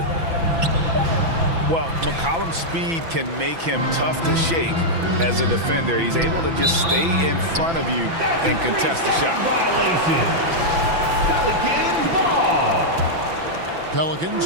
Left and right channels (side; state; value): left; late; 6.0 ms